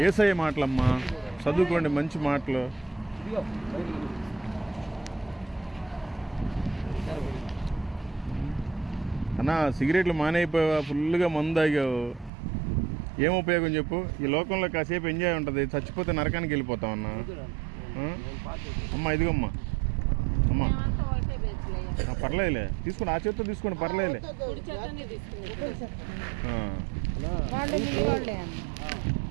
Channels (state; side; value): drops out; left; at 12.3 s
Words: యేసయ్య మాటలమ్మా. చదువుకోండి మంచి మాటలు. అన్నా సిగరెట్లు మానేయిపోయావా? ఫుల్గా మందు తాగావు. ఏం ఉపయోగం చెప్పు? ఈ లోకంలో కాసేపు ఎంజాయ్ ఉంటుంది, చచ్చిపోతే నరకానికి వెళ్ళిపోతావు అన్నా. అమ్మా ఇదిగమ్మా. అమ్మా పర్లేదులే, తీసుకోండి. ఆ చేతితో తీసుకోండి, పర్లేదులే.